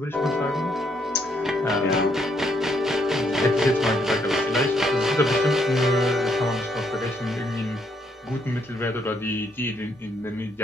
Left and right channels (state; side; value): normal; both; correlation 0.73